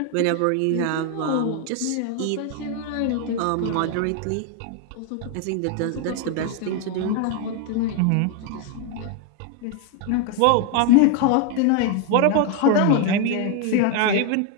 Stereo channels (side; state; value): both; different; correlation 0.01